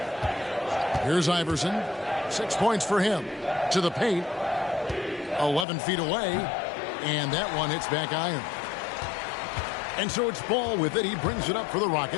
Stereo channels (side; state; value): right; drops out; at 5.7 s